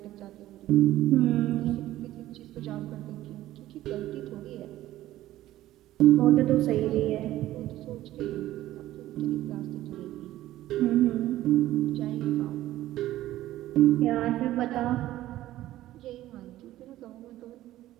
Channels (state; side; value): quieter; left; 14.7 dB